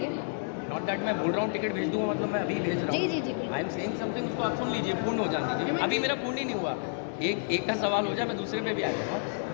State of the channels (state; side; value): silent; right; digital silence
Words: नॉट दैट मैं बोल रहा हूँ टिकट भेज दूंगा मतलब मैं अभी भेज रहा हूँ। जी। आई एम सेइंग समथिंग, उसको आप सुन लीजिए, पूर्ण हो जाने दीजिए। अभी मेरा पूर्ण ही नहीं हुआ। एक का सवाल हो जाए मैं दूसरे पे भी आ जाऊँगा।